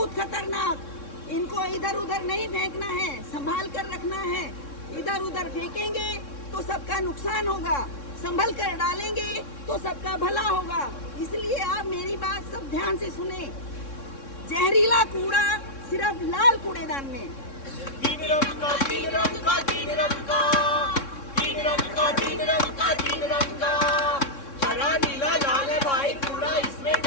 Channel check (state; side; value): late; right; 3.6 ms